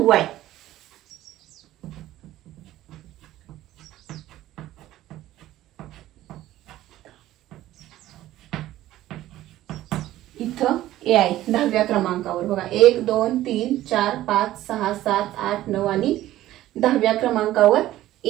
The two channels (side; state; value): left; quieter; 14.6 dB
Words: आहे. इथं ए आहे 10व्या क्रमांकावर. बघा 1 2 3 4 5 6 7 8 9 आणि 10व्या क्रमांकावर